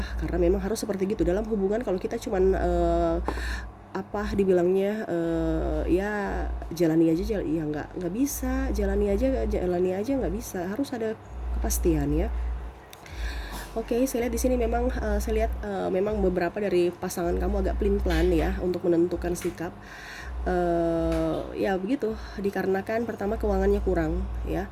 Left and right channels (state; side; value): identical; both; correlation 1.00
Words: karena memang harus seperti gitu dalam hubungan. Kalau kita cuman dibilangnya ya jalani aja, ya nggak bisa, jalani aja nggak bisa, harus ada kepastian ya. Oke, saya lihat di sini memang saya lihat memang beberapa dari pasangan kamu agak pelin-pelan ya untuk menentukan sikap. Ya begitu, dikarenakan pertama keuangannya kurang ya,